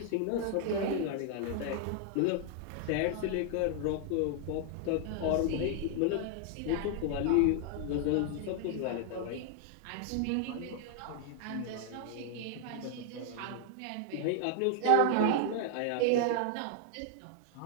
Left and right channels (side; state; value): both; different; correlation 0.00